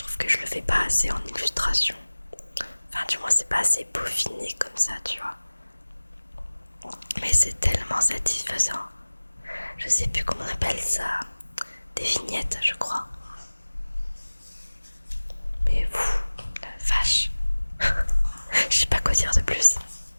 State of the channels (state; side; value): inverted; both; correlation -1.00